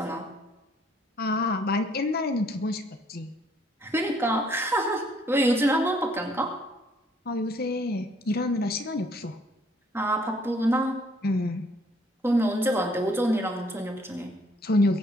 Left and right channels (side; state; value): both; normal; correlation 0.64